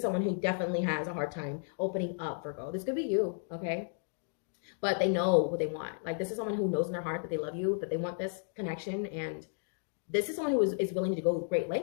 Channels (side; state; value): right; silent; digital silence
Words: someone who definitely has a hard time opening up, Virgo. This could be you. Okay. But they know what they want. Like, this is someone who knows in their heart that they love you, that they want this connection, and this is someone who is willing to go great